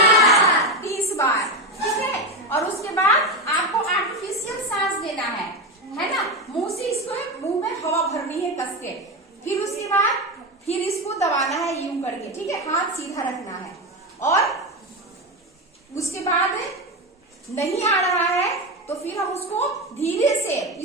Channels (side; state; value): both; normal; correlation 0.15